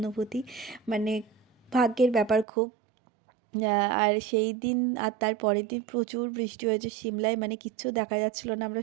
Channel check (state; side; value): drops out; left; at 2.5 s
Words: মানে ভাগ্যের ব্যাপার খুব। আর সেই দিন আর তার পরের দিন প্রচুর বৃষ্টি হয়েছে সিমলায়, মানে কিচ্ছু দেখা যাচ্ছিল না। আমরা